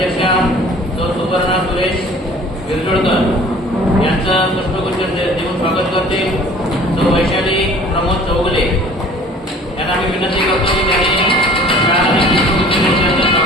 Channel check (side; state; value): both; normal; correlation 0.49